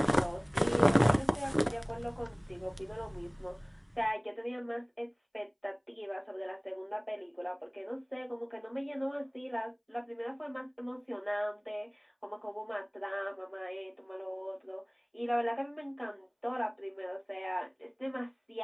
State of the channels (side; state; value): both; identical; correlation 1.00